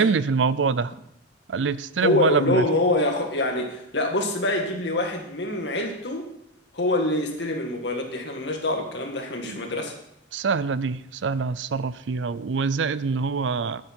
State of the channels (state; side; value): normal; both; correlation 0.08